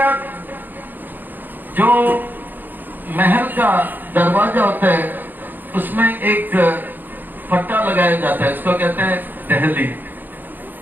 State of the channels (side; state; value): left; late; 0.089 ms